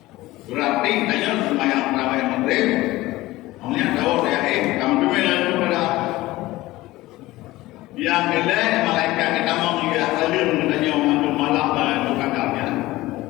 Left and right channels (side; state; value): right; quieter; 18.2 dB